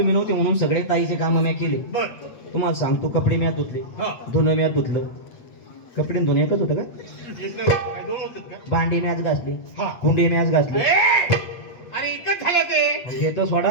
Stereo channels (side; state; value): right; late; 8.3 ms